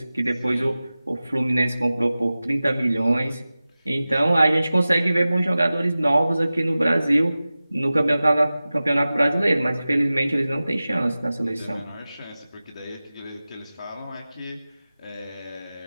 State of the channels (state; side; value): inverted; both; correlation -0.96